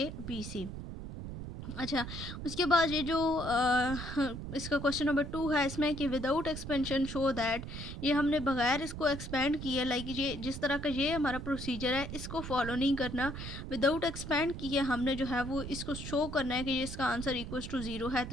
अच्छा, उसके बाद ये जो इसका क्वेश्चन नंबर 2 है इसमें कि विदाउट एक्सपेंशन शो दैट, ये हमने बगैर इसको एक्सपेंड किए, लाइक ये जिस तरह का ये हमारा प्रोसीजर है इसको फॉलो नहीं करना, विदाउट एक्सपेंड किए हमने जो है वो इसको शो करना है कि ये इसका आंसर इक्वल्स टू 0 है।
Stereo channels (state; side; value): noise; right; rumble, 8 dB below the sound